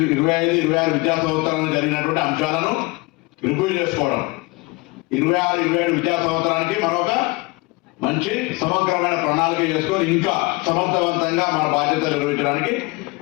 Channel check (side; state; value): right; quieter; 24.8 dB